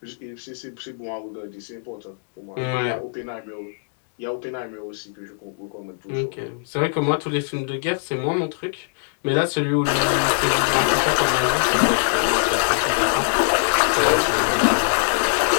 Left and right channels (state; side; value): silent; right; digital silence